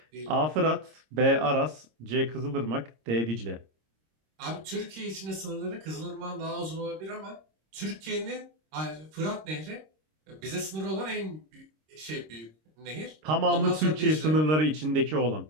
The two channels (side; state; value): left; late; 26 ms